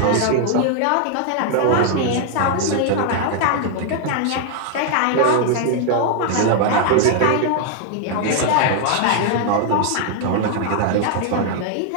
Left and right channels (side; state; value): both; different; correlation 0.00